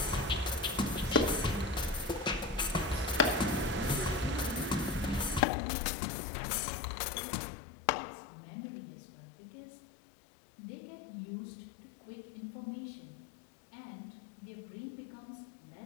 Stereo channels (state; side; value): drops out; right; at 5.5 s